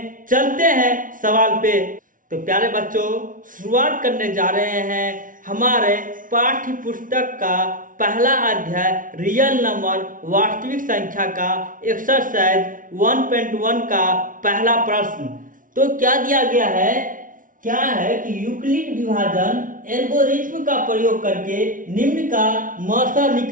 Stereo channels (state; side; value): late; left; 0.39 ms